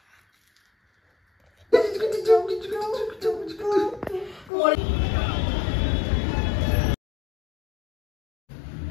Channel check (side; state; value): right; drops out; at 4.5 s